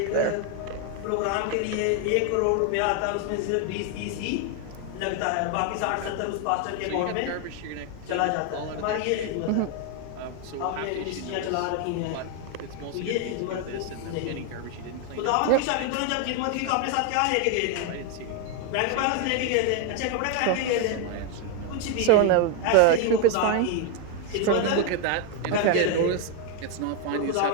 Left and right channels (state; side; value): different; both; correlation 0.01